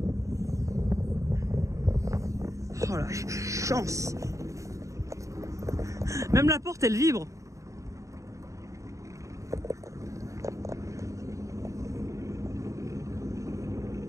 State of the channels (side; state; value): left; late; 0.15 ms